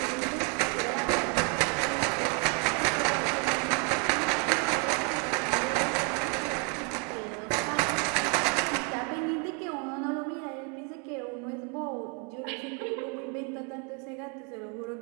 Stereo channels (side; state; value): left; quieter; 35.7 dB